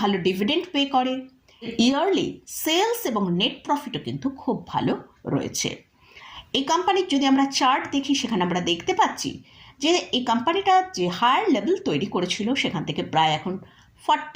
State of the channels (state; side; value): identical; both; correlation 1.00